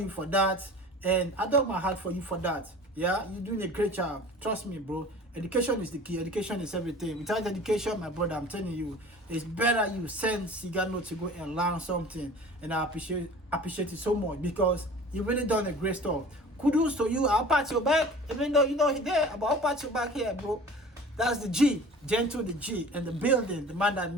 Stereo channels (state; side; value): normal; both; correlation 0.42